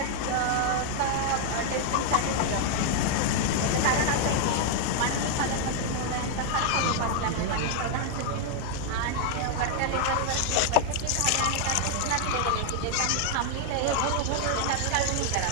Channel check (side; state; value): both; different; correlation 0.00